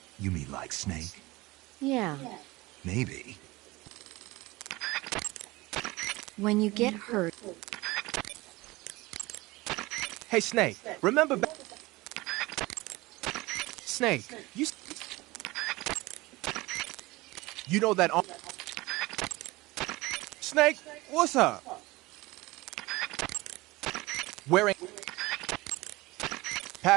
You mean like Snake? Yeah. Maybe. When you get hurt, Hey, Snake, remember back... Snake, you know that... Snake, what's up? Wearing...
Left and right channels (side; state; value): left; quieter; 21.3 dB